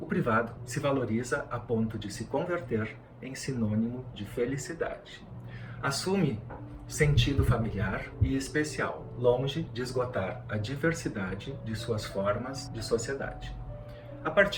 privado se valoriza a ponto de se converter em sinônimo de felicidade. Assume sentido familiar e especial, longe de esgotar a diversidade de suas formas de sociedade. A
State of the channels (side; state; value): both; identical; correlation 1.00